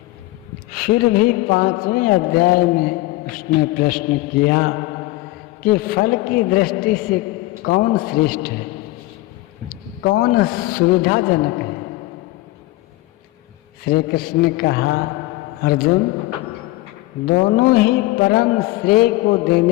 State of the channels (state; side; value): quieter; right; 18.9 dB